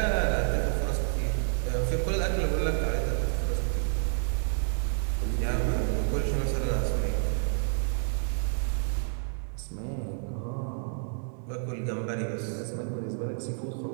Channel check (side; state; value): left; silent; digital silence